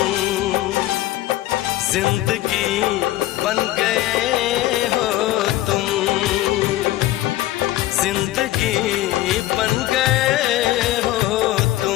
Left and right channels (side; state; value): right; quieter; 15.8 dB